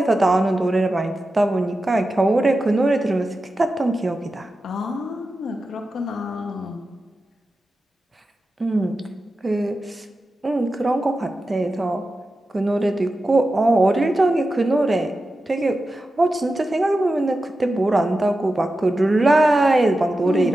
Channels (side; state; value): both; normal; correlation 0.92